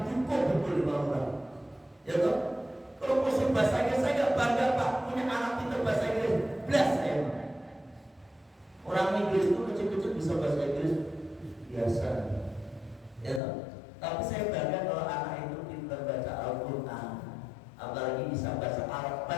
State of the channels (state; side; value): drops out; right; at 13.4 s